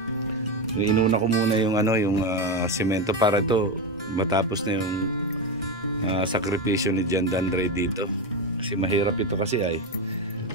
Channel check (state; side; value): normal; both; correlation 0.14